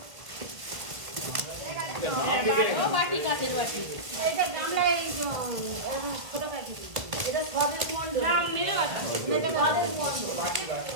ও বাটি কাচের বাটি এটা গামলায় ছোট প্যাকেট এটা সবের মন্ড নাম মেরে আছে এটা সবের মন্ড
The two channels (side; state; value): left; late; 1.4 ms